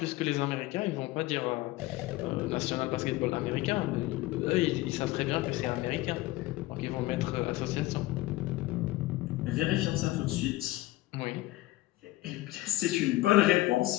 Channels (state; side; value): quieter; right; 18.2 dB